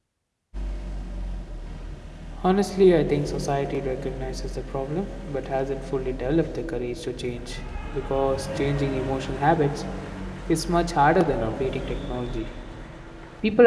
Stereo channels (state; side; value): identical; both; correlation 1.00